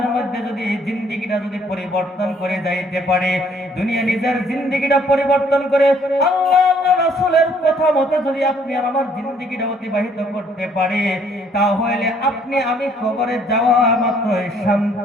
মধ্যে যদি জিন্দেগিটা যদি পরিবর্তন করে যাইতে পারে, দুনিয়া নিজের জিন্দেগিটা পরিবর্তন করে আল্লাহ রাসূলের কথা মতে যদি আপনি আর আমার জিন্দেগিটা অতিবাহিত করতে পারে, তাহলে আপনি আমি কবরে যাওয়া মাত্র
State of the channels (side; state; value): both; normal; correlation 0.63